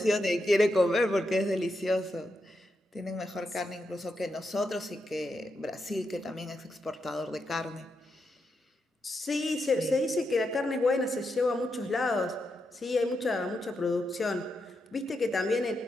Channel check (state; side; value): normal; both; correlation 0.84